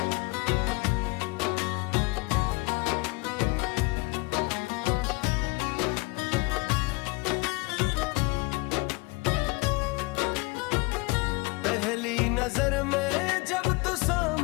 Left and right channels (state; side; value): quieter; right; 25.7 dB